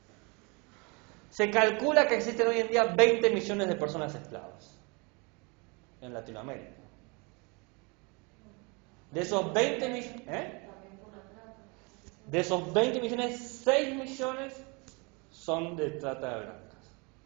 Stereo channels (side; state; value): left; quieter; 29.7 dB